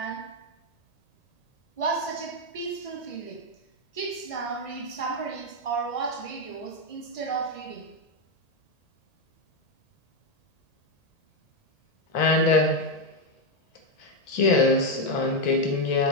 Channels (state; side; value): late; right; 1.8 ms